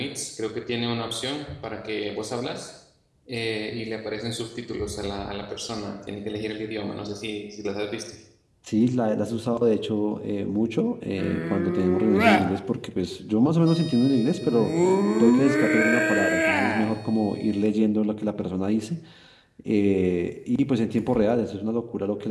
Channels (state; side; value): identical; both; correlation 1.00